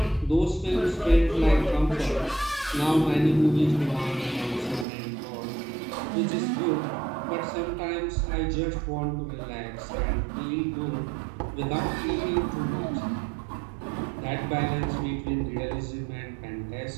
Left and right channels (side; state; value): left; drops out; at 4.9 s